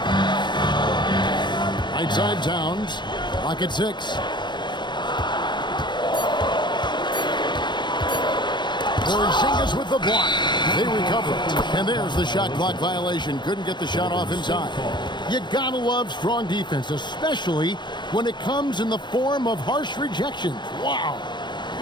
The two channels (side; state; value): right; late; 0.22 ms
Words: Right side Towns. Clock at 6. Porzingis with the block. They recover. And there's the shot clock violation. Couldn't get the shot off in time. You gotta love strong defense, especially when it comes in the form of harsh rejections. Wow.